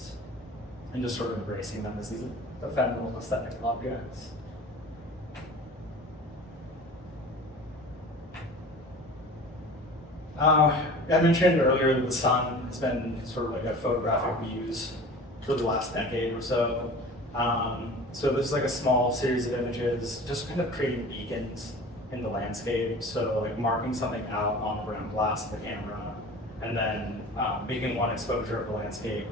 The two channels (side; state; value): both; normal; correlation 0.40